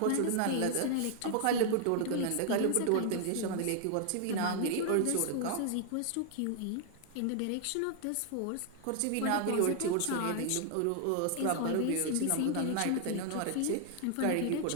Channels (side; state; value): both; different; correlation 0.00